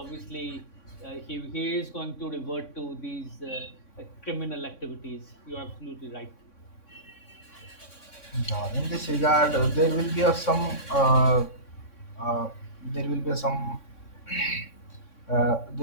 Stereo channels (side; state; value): right; late; 3.6 ms